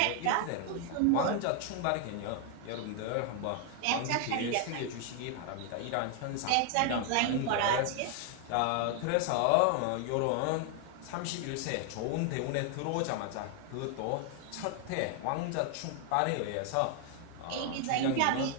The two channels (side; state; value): both; different; correlation 0.00